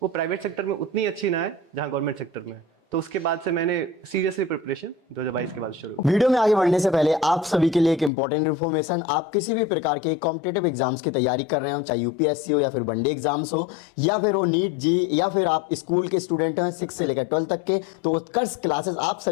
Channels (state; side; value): drops out; right; at 8.1 s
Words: वो प्राइवेट सेक्टर में उतनी अच्छी ना है जहाँ गवर्नमेंट सेक्टर में है। तो उसके बाद से मैंने सीरियसली प्रिपरेशन 2022 के बाद शुरू। वीडियो में आगे बढ़ने से पहले आप सभी के लिए एक इंपॉर्टेंट इन्फॉर्मेशन। आप किसी भी प्रकार के कॉम्पिटिटिव एग्जाम्स की तैयारी कर रहे हो, चाहे यूपीएससी हो या फिर वनडे एग्जाम्स हो या फिर वो नीट जी, या फिर आप स्कूल के स्टूडेंट हैं 6 से लेकर 12 तक के, तो उत्कर्ष क्लासेस आप